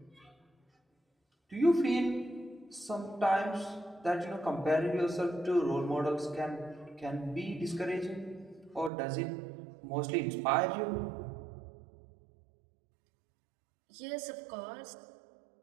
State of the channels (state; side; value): drops out; left; at 8.9 s